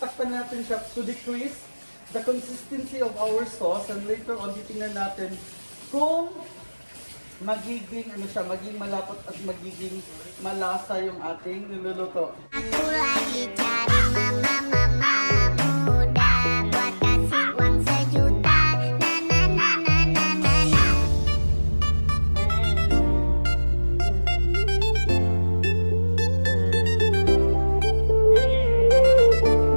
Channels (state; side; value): inverted; both; correlation -1.00